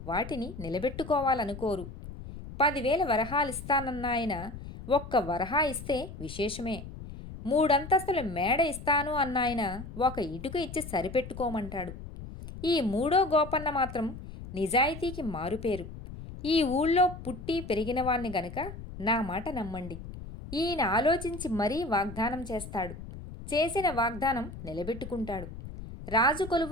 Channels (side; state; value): left; noise; rumble, 12 dB below the sound